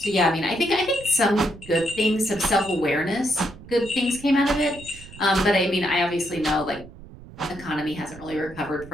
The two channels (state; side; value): noise; right; rumble, 18 dB below the sound